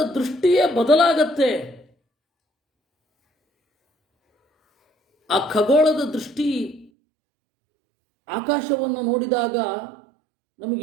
ದೃಷ್ಟಿಯೇ ಬದಲಾಗತ್ತೆ. ಆ ಖಗೋಳದ ದೃಷ್ಟಿ ಆಕಾಶವನ್ನು ನೋಡಿದಾಗ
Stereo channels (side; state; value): left; drops out; at 6.9 s